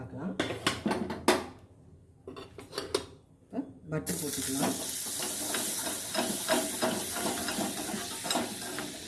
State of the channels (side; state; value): both; identical; correlation 1.00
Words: இப்போ பட்டர் போட்டுக்கலாம்.